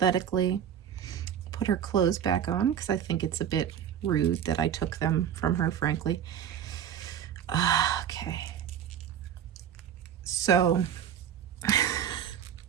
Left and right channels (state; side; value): quieter; left; 9.3 dB